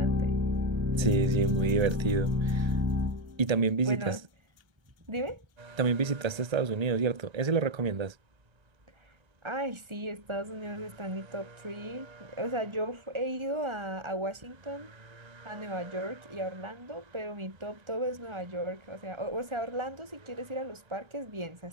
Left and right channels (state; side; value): late; left; 1.3 ms